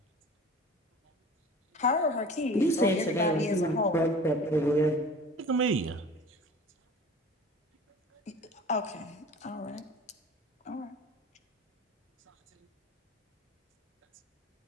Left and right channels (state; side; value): normal; both; correlation 0.41